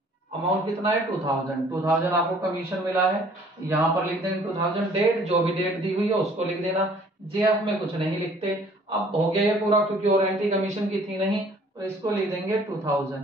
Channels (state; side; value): normal; both; correlation 0.56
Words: अमाउंट कितना है 2000 आपको कमीशन मिला है, यहां पर लिख देंगे 2000। डेट जो भी डेट दी हुई है उसको लिख देना, जेएफ में कुछ नहीं लिखते। अब हो गया ये पूरा, क्योंकि और एंट्री कमीशन की थी नहीं, तो इसको लिख देंगे